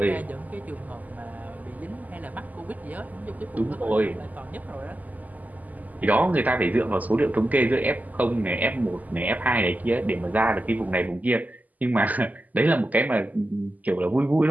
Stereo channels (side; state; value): left; late; 0.080 ms